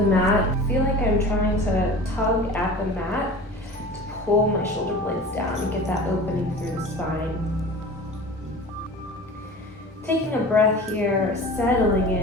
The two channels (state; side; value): normal; both; correlation 0.38